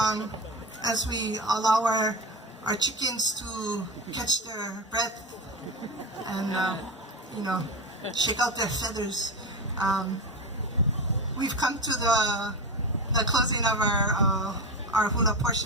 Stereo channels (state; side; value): normal; both; correlation 0.21